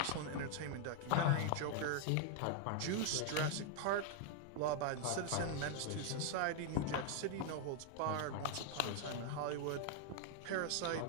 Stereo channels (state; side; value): different; both; correlation 0.00